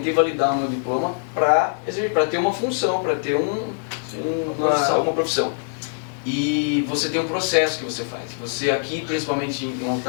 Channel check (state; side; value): silent; right; digital silence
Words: validar o meu diploma para ter uma função, para ter uma profissão. E você tem um processo que você faz. Você aqui, principalmente em